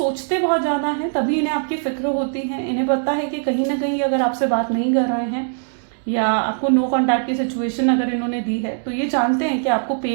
बहुत ज़्यादा हैं, तभी इन्हें आपकी फिक्र होती है। इन्हें पता है कि कहीं ना कहीं अगर आपसे बात नहीं कर रहे हैं या आपको नो कॉन्टैक्ट की सिचुएशन अगर इन्होंने दी है तो ये जानते हैं कि आपको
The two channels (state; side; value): silent; left; 65 dB below the other